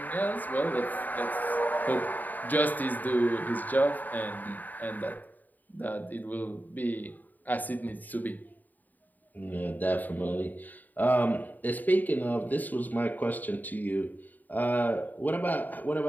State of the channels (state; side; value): late; right; 0.084 ms